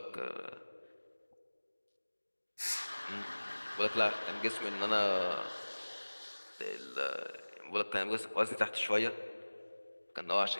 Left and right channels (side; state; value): both; inverted; correlation -1.00